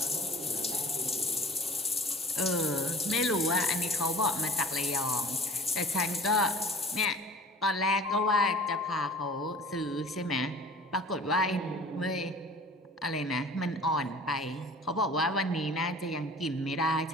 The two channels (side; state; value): both; normal; correlation 0.44